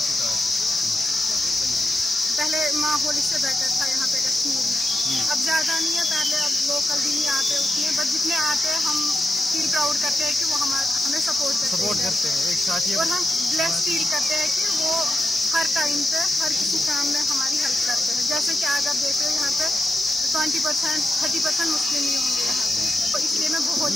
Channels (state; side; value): normal; both; correlation 0.88